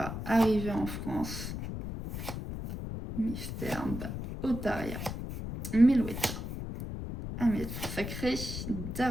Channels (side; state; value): left; noise; rumble, 6 dB below the sound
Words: arriver en France. Mystère, Otaria, Melouetta, Ahmed Sacré,